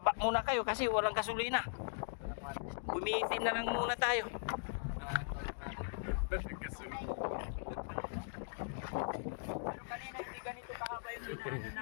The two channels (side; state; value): right; silent; digital silence